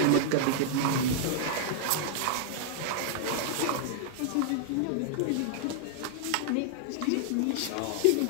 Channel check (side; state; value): both; different; correlation 0.00